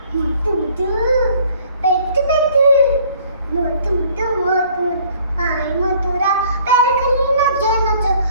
Mutu mutu betu betu mutu mutu mutu hai mutu ram. पैर खली ना जे नचो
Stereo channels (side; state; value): both; inverted; correlation -0.57